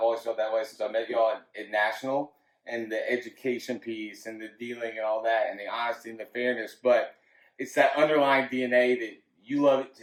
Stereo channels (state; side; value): identical; both; correlation 1.00